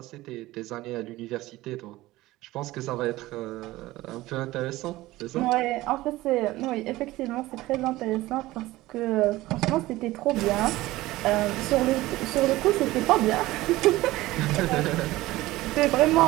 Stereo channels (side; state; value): left; quieter; 17.9 dB